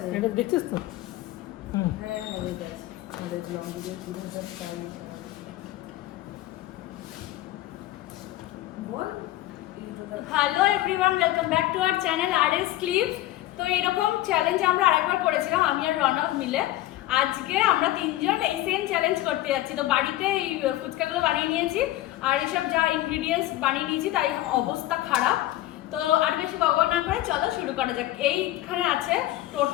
এটা দেখছিস তো? হ্যাঁ রেড আছে আমাদের লং ভিডিও 3000 টাইম বল hello everyone, welcome back to our channel RS clips. তো এরকম চ্যালেঞ্জ আমরা আরেকবার করেছিলাম আমি আর রনক মিলে। আজকে আমরা তিনজন এই সেম চ্যালেঞ্জ করতে যাচ্ছি। তো বাড়িতে এই ফুচকাগুলো বানিয়ে নিয়েছি আর এসব যা ইনগ্রেডিয়েন্টস বানিয়ে নিয়েছি তাই অবস্থা খারাপ। তো আর বেশি বকবক না করে চলো শুরু করা যাক। এইখানে আছে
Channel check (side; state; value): right; quieter; 15.7 dB